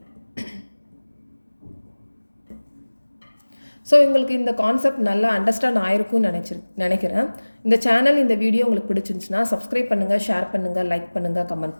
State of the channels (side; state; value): both; inverted; correlation -1.00